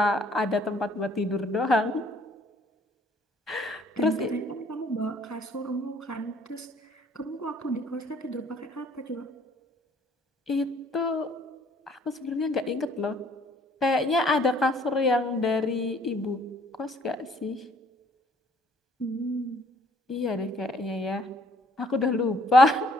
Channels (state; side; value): normal; both; correlation 0.61